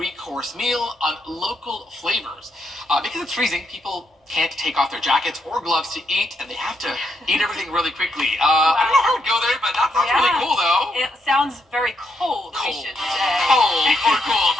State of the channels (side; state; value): both; normal; correlation 0.78